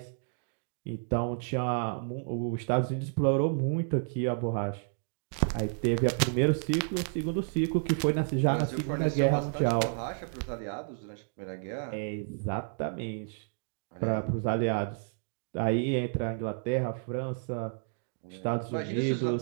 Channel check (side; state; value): left; silent; digital silence